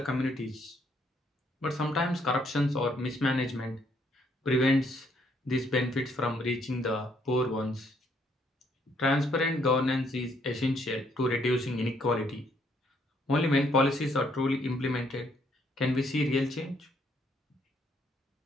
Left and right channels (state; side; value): normal; both; correlation 0.69